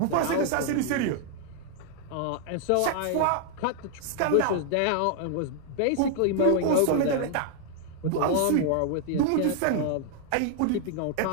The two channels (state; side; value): different; both; correlation 0.00